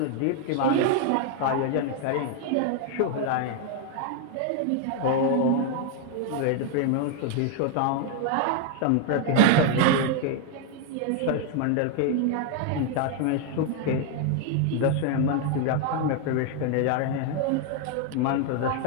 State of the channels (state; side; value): different; both; correlation 0.01